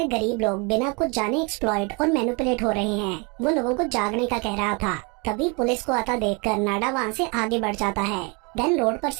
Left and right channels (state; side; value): quieter; left; 31.2 dB